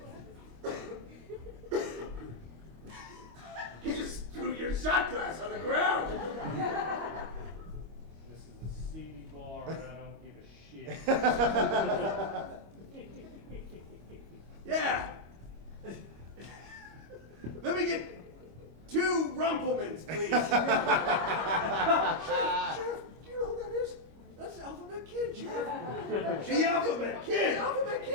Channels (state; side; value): late; left; 25 ms